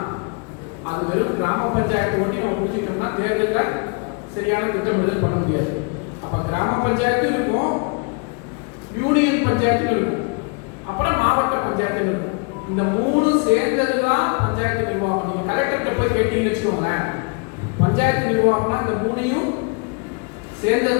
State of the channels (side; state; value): right; quieter; 35.0 dB